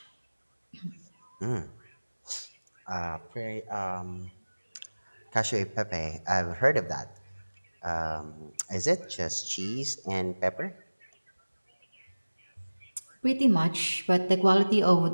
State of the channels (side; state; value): both; inverted; correlation -1.00